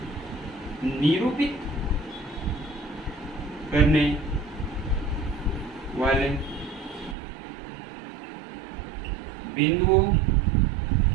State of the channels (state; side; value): drops out; left; at 7.2 s